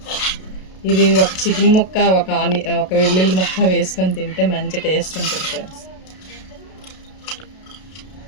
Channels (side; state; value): right; late; 32 ms